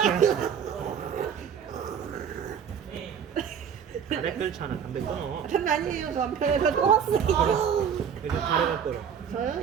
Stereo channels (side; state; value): left; quieter; 7.8 dB